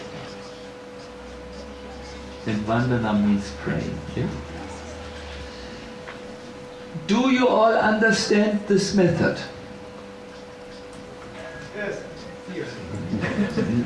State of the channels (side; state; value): both; identical; correlation 1.00